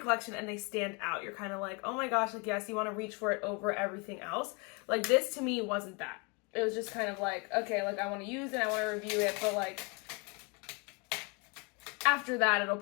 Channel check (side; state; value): right; quieter; 31.1 dB